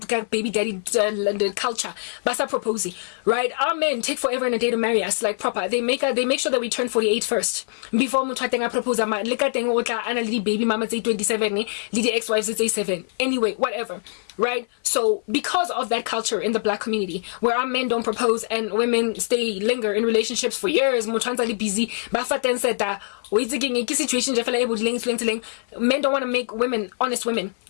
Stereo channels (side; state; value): right; silent; 55 dB below the other